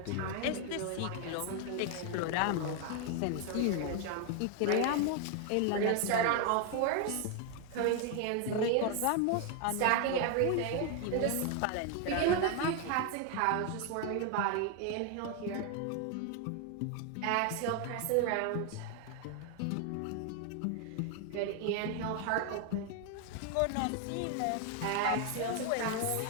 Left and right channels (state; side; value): different; both; correlation 0.00